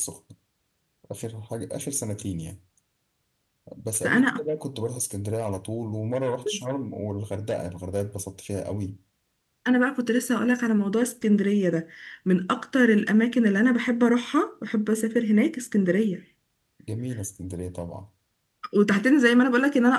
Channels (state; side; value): identical; both; correlation 1.00